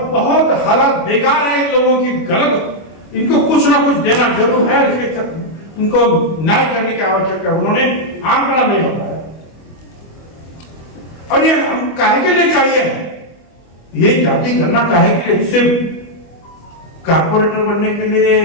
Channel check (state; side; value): late; right; 25 ms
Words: बहुत हालात बेकार है इन लोगों की, गलत, इनको कुछ ना कुछ देना जरूर है, इसके इनको न्याय करने की आवश्यकता है। उन्होंने आंकड़ा नहीं बताया। और ये हम काहे के लिए चाहिए, ये जाति गणना काहे के लिए, सिर्फ कारपोरेटर बनने के लिए